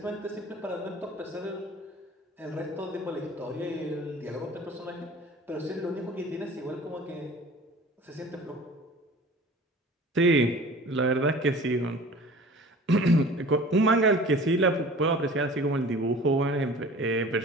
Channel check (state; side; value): normal; both; correlation 0.43